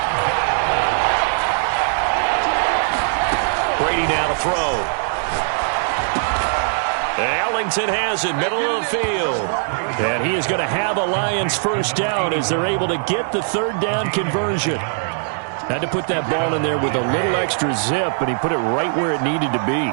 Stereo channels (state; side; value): silent; left; digital silence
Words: Brady now to throw. Ellington has it, middle of the field. And he is going to have a Lions first down as they're able to get the third down conversion. Had to put that ball in there with a little extra zip, and he put it right where it needed to be.